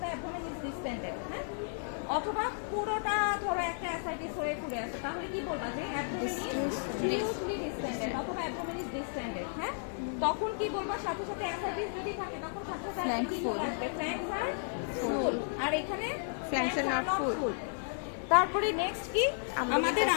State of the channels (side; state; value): right; silent; digital silence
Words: the abdomen is distended. হ্যাঁ, অথবা পুরোটা ধরো একটা অ্যাসাইটিস হয়ে ঘুরে আছে, তাহলে কি বলবা যে অ্যাবডোমেন ইজ ডিউসলি ডিসটেন্ডেড অথবা অ্যাবডোমেন ইজ ডিসটেন্ডেড। হ্যাঁ, তখন কি বলবা? সাথে সাথে অ্যাসাইটিস যদি থাকে তখন সাথে সাথে কি বলবে? ফ্ল্যাঙ্কস আর ফুল, আর এখানে ফ্ল্যাঙ্কস আর নট ফুল। তারপরে নেক্সট কি আমাদের